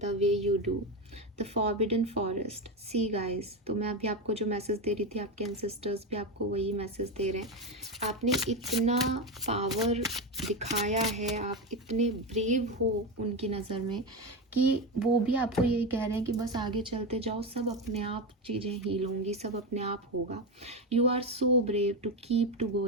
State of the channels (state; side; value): normal; both; correlation 0.15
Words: way you do. The forbidden forest. See guys, तो मैं अभी आपको जो मैसेज दे रही थी, आपके एंसेस्टर्स भी आपको वही मैसेज दे रहे हैं। आपने इतना पावर दिखाया है, आप इतने ब्रेव हो उनकी नज़र में, कि वो भी आपको यही कह रहे हैं कि बस आगे चलते जाओ, सब अपने आप चीज़ें हील होंगी, सब अपने आप होगा। You are so brave to keep to